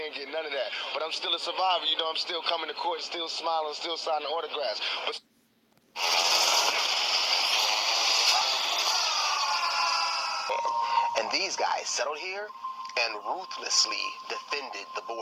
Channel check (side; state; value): both; identical; correlation 1.00